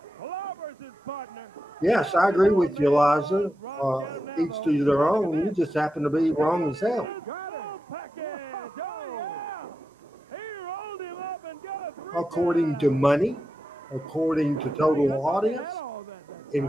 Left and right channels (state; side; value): normal; both; correlation 0.89